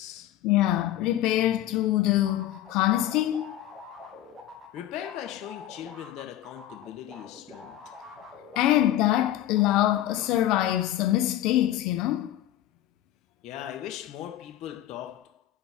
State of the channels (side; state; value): right; quieter; 13.3 dB